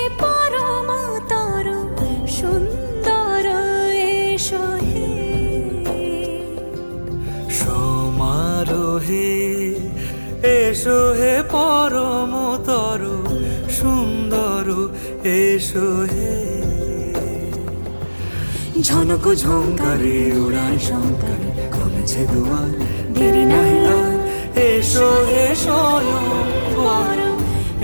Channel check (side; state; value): both; inverted; correlation -1.00